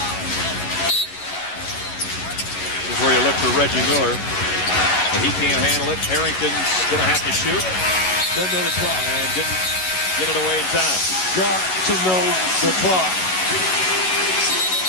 This is where you look for Reggie Miller. But he can't handle it. Harrington's going to have to shoot. Doesn't know the clock. And didn't get it away in time. Got to know the clock.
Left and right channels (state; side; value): late; right; 11 ms